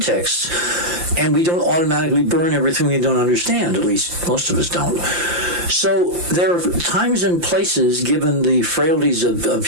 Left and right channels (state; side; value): late; left; 5.8 ms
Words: and we don't automatically burn everything we don't understand. At least most of us don't. So there are times and places, given the frailties of